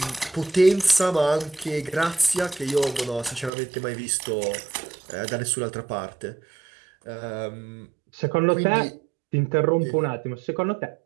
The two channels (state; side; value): drops out; left; at 3.5 s